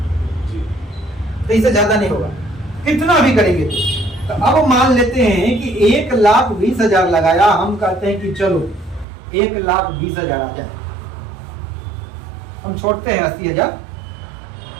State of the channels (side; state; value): left; drops out; at 9.1 s